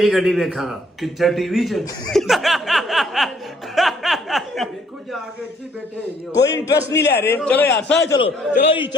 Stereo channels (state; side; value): normal; both; correlation 0.63